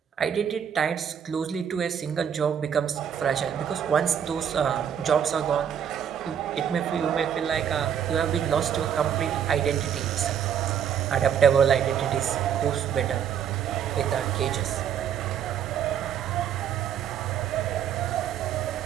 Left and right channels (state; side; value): quieter; left; 8.6 dB